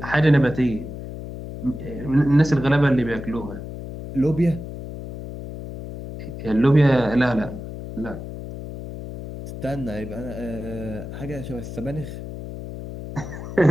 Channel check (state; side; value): noise; left; hum, 10 dB below the sound